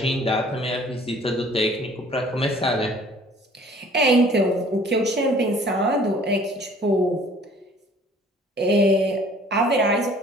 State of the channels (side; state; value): both; normal; correlation 0.53